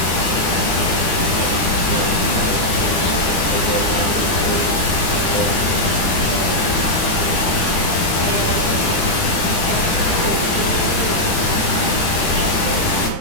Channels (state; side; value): late; right; 10 ms